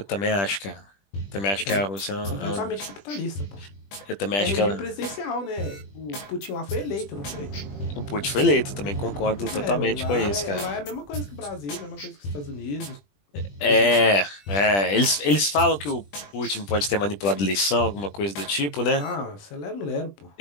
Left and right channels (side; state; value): right; late; 20 ms